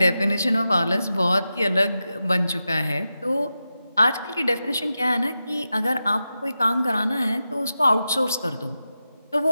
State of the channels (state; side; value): inverted; both; correlation -0.91